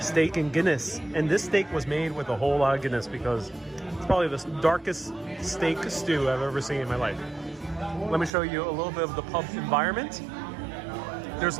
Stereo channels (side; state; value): left; drops out; at 8.3 s